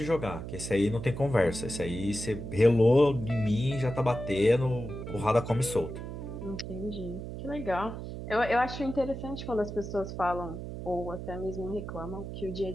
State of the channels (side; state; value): right; noise; hum, 8 dB below the sound